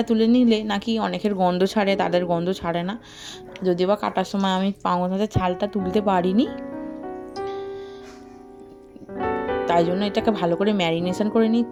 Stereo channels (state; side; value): identical; both; correlation 1.00